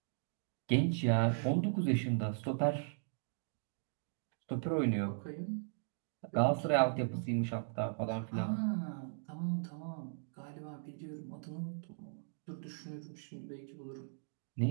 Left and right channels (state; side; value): silent; left; digital silence